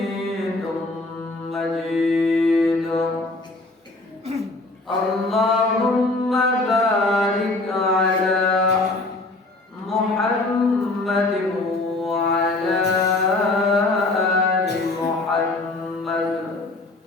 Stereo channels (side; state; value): right; quieter; 3.0 dB